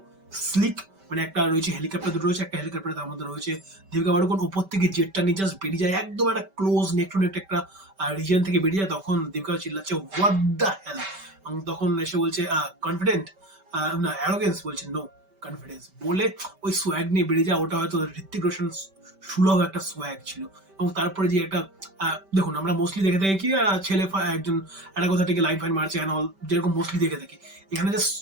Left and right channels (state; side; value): late; left; 5.2 ms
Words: স্লিক, মানে একটা রয়েছে হেলিকপ্টার, দুটো রয়েছে, একটা হেলিকপ্টার তার মধ্যে রয়েছে দীপিকা পাড়ুকোন, উপর থেকে জেটটা নিয়ে জাস্ট বেরিয়ে যায়, একদম একটা ক্লোজ নেক টু নেক একটা রিজিয়ন থেকে বেরিয়ে যায়। তখন দীপিকা চিল্লাচ্ছে হোয়াট দ্য হেল, এবং তখন এসে বলছে কনফিডেন্ট, না অ্যারোগেন্স, বলছে নো কনফিডেন্স, বলে ওই সোয়াগ নিয়ে বেরিয়ে যায়। ওটা হয়তো ঋত্বিক রোশন সুলভ একটা সোয়াগ ছিল। এবং তারপরে যে একটা দেখুন, আমরা মোস্টলি দেখে থাকি কি ছেলে একজন একটা কোথা থেকে লাইন ফাইন মারছে অ্যান্ড অল, যেরকম মোস্টলি দেখে থাকি। এখানে জাস্ট